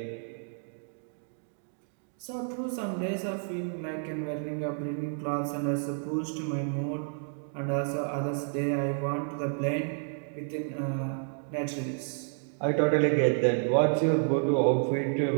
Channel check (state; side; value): silent; left; 58 dB below the other